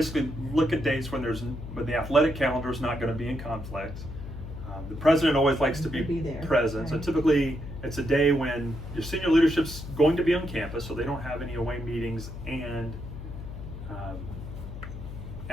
look at dates when the athletic calendar is not going to be in conflict. The president always likes to be there, present, right. so typically it's a day when your senior leadership's going to be on campus, so they don't have any away meetings, and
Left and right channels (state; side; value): noise; left; hum, 10 dB below the sound